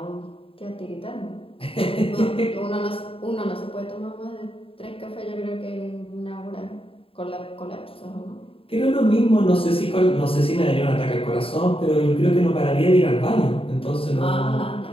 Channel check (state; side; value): late; right; 0.27 ms